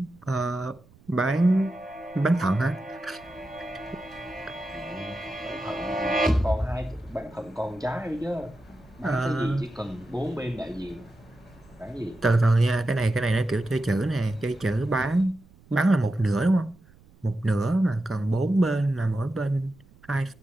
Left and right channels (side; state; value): right; noise; rumble, 27 dB below the sound